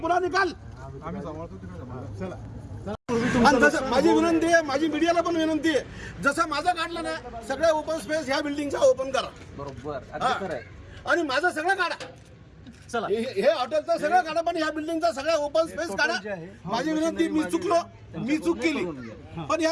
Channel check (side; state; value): both; identical; correlation 1.00